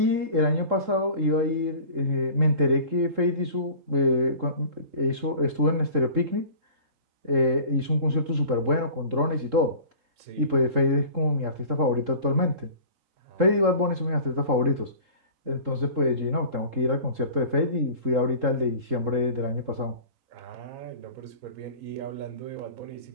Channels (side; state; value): left; late; 3.7 ms